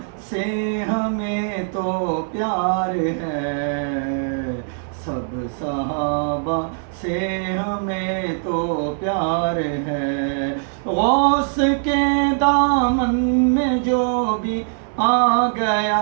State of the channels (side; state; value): left; silent; 65 dB below the other